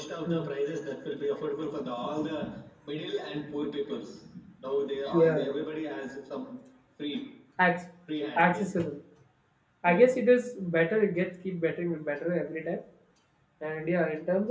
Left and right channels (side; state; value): both; identical; correlation 1.00